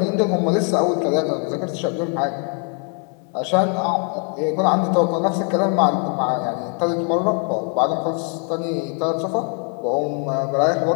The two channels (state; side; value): quieter; right; 36.6 dB